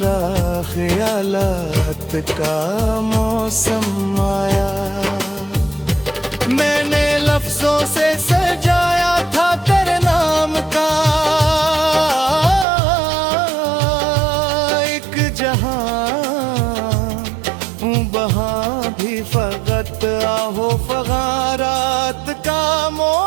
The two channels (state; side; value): drops out; left; at 12.7 s